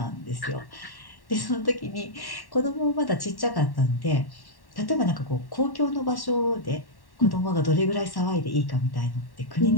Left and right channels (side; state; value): right; late; 1.1 ms